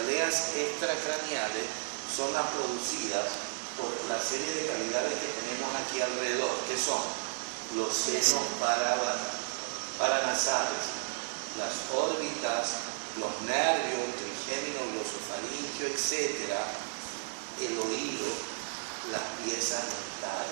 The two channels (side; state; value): left; silent; 56 dB below the other